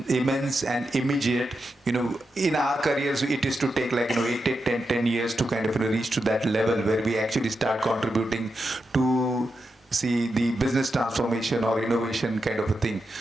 and immediate. In our careers, it is to take 10 years to kind of reach to that level where we actually start contributing to see the business transformation or innovation kind of a thing.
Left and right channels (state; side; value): normal; both; correlation 0.87